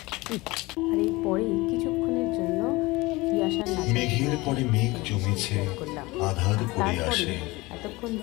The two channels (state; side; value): quieter; right; 22.2 dB